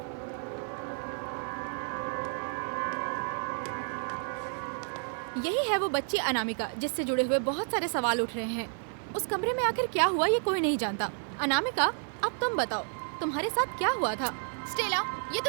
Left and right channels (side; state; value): left; silent; 55 dB below the other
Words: यही है वो बच्ची अनामिका जिससे जुड़े हुए बहुत सारे सवाल उठ रहे हैं। उस कमरे में आखिर क्या हुआ ये कोई नहीं जानता। अनामिका, अब तुम बताओ, तुम्हारे साथ क्या हुआ था? स्टेला, ये